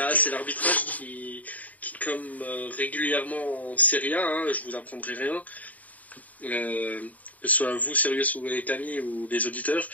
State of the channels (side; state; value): right; late; 0.074 ms